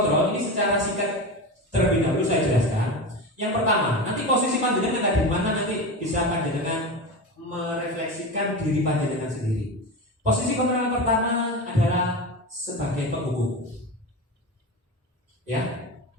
ini secara singkat terlebih dahulu saya jelaskan. Yang pertama, nanti posisi panjenengan ada di mana, nanti bisa panjenengan merefleksikan diri panjenengan sendiri. Posisi kontrol yang pertama adalah sebagai penghukum. Ya,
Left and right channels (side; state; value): both; normal; correlation 0.24